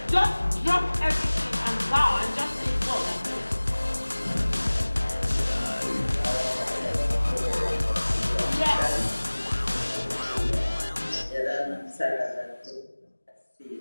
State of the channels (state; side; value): inverted; both; correlation -1.00